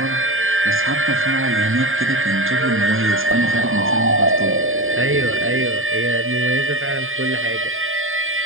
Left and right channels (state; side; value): late; left; 0.59 ms